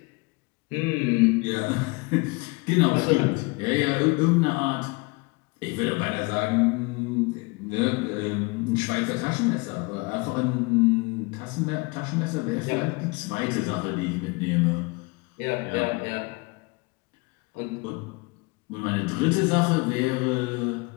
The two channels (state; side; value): quieter; right; 27.1 dB